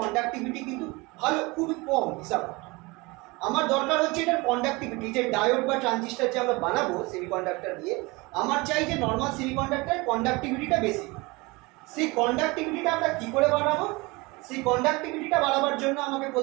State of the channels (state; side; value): quieter; left; 24.5 dB